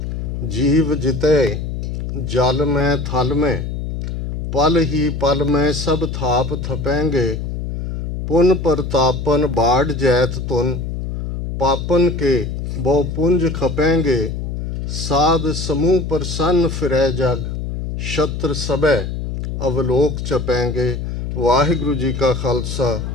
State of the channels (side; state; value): left; noise; hum, 4 dB below the sound